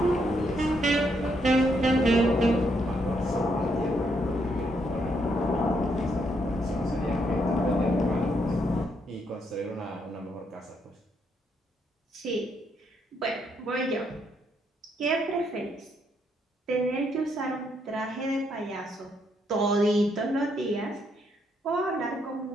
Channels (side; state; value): both; normal; correlation 0.75